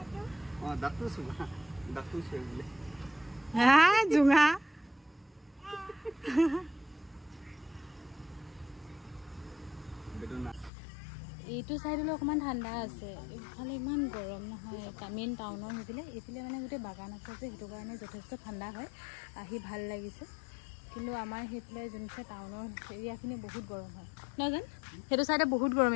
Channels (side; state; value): right; drops out; at 10.7 s